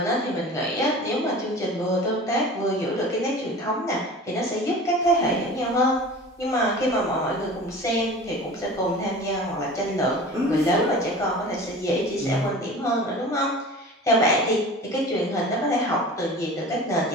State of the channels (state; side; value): normal; both; correlation 0.38